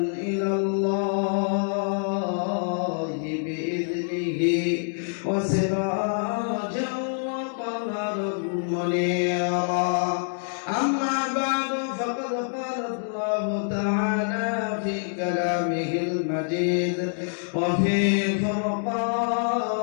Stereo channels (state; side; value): silent; right; digital silence